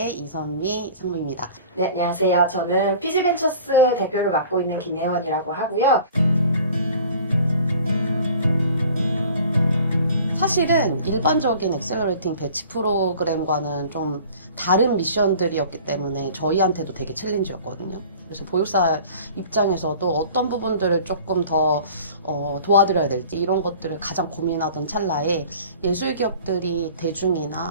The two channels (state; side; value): inverted; both; correlation -0.46